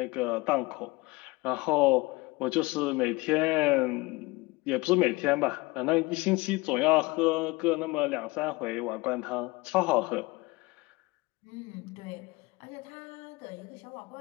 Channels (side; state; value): right; quieter; 23.3 dB